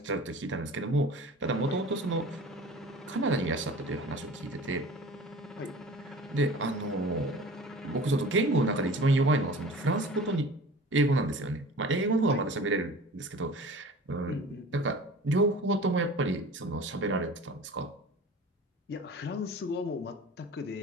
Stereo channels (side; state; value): both; normal; correlation 0.41